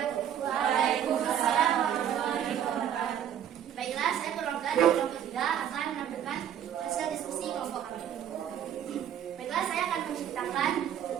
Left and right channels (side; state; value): left; quieter; 9.9 dB